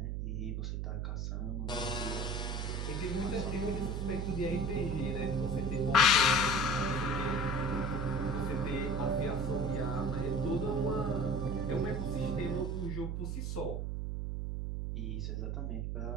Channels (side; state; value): right; noise; hum, 1 dB below the sound